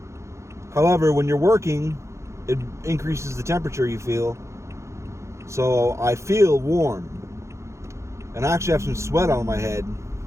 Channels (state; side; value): late; left; 0.14 ms